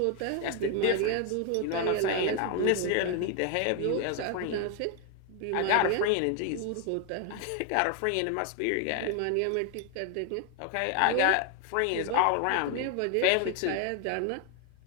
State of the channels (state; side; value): different; both; correlation 0.00